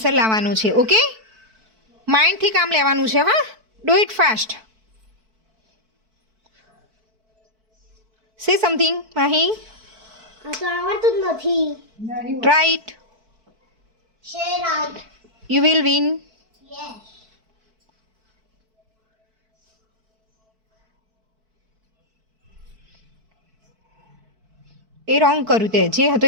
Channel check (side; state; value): left; late; 4.5 ms